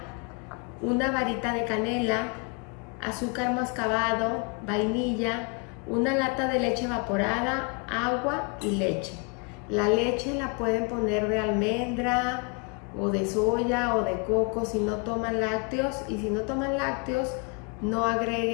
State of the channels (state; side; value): quieter; right; 33.1 dB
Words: una varita de canela, azúcar mascabado, vainilla, una lata de leche evaporada, agua y leche. La leche la pueden poner de almendra o de soya o de coco si no toman lácteos, y si no toman lácteos no